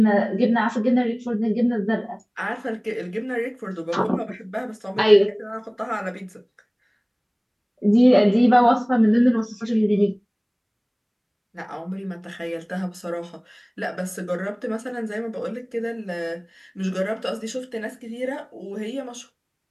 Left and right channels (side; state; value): both; identical; correlation 1.00